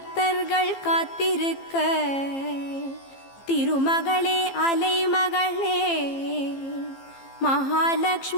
காத்திருக்க திருமகளே அலைமகளே,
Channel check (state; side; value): late; right; 15 ms